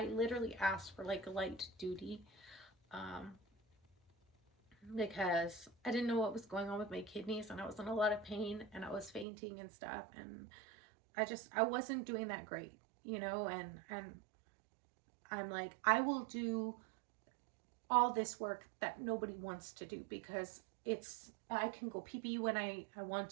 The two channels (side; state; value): left; drops out; at 9.2 s